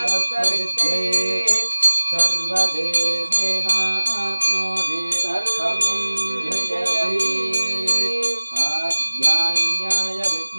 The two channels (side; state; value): both; inverted; correlation -1.00